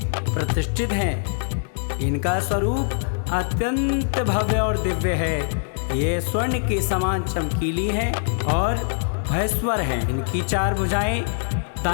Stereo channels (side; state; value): right; silent; 63 dB below the other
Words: प्रतिष्ठित हैं। इनका स्वरूप अत्यंत भव्य और दिव्य है। ये स्वर्ण के समान चमकीली हैं और भयस्वर हैं। इनकी चार भुजाएं,